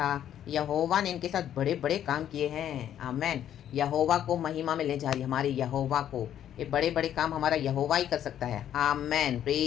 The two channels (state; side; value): quieter; right; 10.5 dB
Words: यहोवा ने इनके साथ बड़े बड़े काम किए हैं. आमेन. यहोवा को महिमा में ले जा रही हमारे यहोवा को. ये बड़े बड़े काम हमारा यहोवा ही कर सकता है. आमेन.